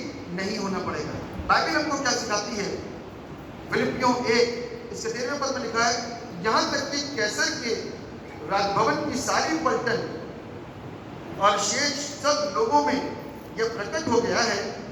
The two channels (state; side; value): identical; both; correlation 1.00